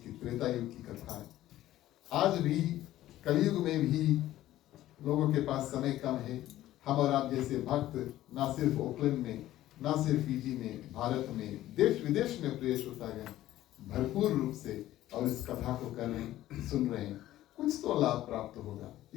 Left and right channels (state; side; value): quieter; right; 14.3 dB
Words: कि त्रेता युग की कथा है। आज भी कलयुग में भी लोगों के पास समय कम है। हम और आप जैसे भक्त ना सिर्फ ओकलैंड में, ना सिर्फ फीजी में, भारत में, देश विदेश में प्रिय श्रोतागण भरपूर रूप से और इस कथा को कर रहे हैं, सुन रहे हैं, कुछ तो लाभ प्राप्त होगा।